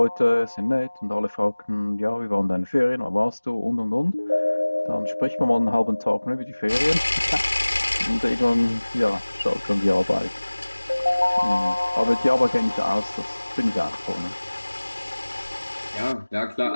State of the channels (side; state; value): both; inverted; correlation -1.00